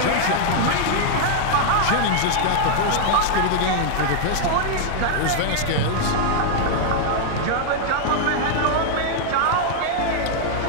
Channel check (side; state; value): both; different; correlation -0.01